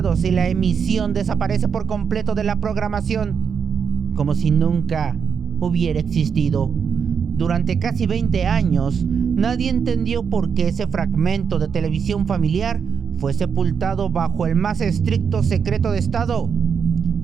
y la emisión desaparece por completo de la programación, como si nunca hubiera existido. Durante casi 20 años, nadie entendió por qué ese fragmento de televisión familiar fue sepultado bajo el más estricto secreto de Estado.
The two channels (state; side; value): quieter; left; 6.7 dB